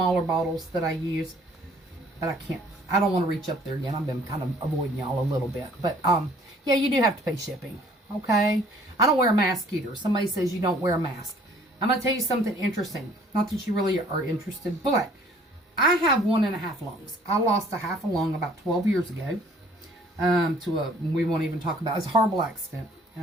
bottles that I use, but I don't want to reach up there again. I've been kind of avoiding y'all a little bit. But, yeah, you do have to pay shipping, okay? I don't wear a mask either. Somebody says you don't wear a mask. I'm going to tell you something interesting. Not that you really are interested, but I have 1.5 lungs. I lost a half a lung about 12 years ago we won't even talk about it. It's a horrible accident.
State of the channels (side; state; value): both; normal; correlation 0.57